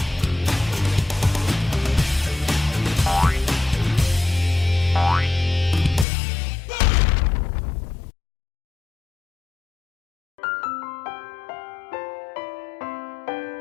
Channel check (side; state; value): right; drops out; at 6.1 s